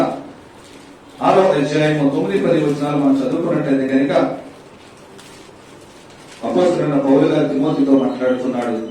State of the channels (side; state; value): both; identical; correlation 1.00